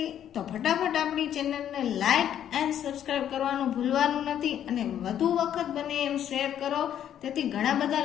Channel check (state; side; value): quieter; right; 10.2 dB